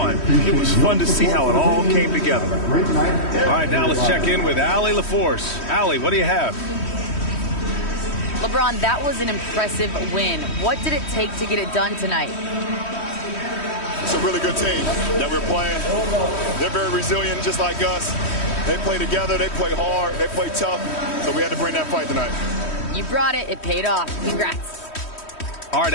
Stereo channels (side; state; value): right; late; 3.1 ms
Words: it was fun to see how it all came together. All right, now let's check in with Allie LaForce. Allie, what do you have? LeBron, that was an impressive win. What did it take to get it done tonight? It's a really good team that we're playing. They're very resilient, just like us. They play together, they play hard, they play tough, so we had to bring that fight tonight. You brought it. It paid off. Congrats. All right,